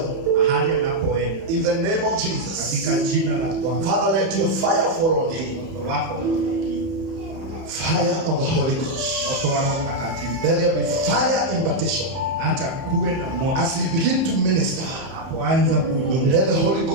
In the name of Jesus, Father, let your fire fall on him. Fire of the Holy Ghost. Let there be fire impartation. As he begin to minister, let the Holy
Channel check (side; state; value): left; late; 31 ms